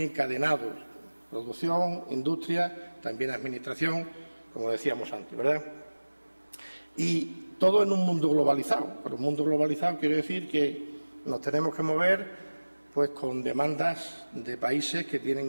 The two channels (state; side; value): inverted; both; correlation -1.00